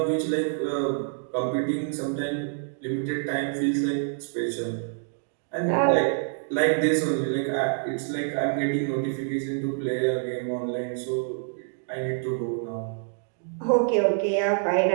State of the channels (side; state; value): left; silent; digital silence